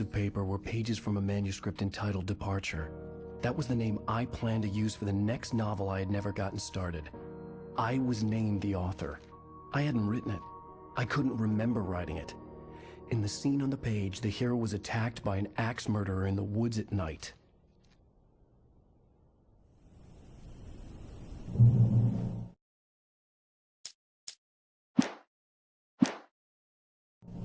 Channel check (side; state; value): both; identical; correlation 1.00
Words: of paper were pages from a manuscript entitled Departure. That was the name I planned to use for the next novel I had never gotten started. I was named the author. I hadn't written it. I couldn't remember writing it. In the scene on the page, the hero was attacked by an axe murderer in the woods at night.